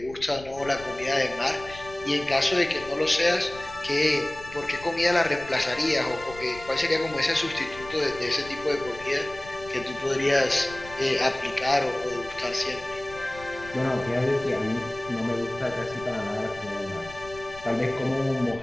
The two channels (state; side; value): noise; left; rumble, 18 dB below the sound